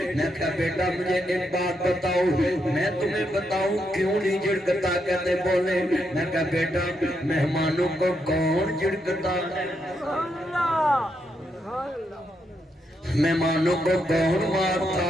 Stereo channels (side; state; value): both; normal; correlation 0.80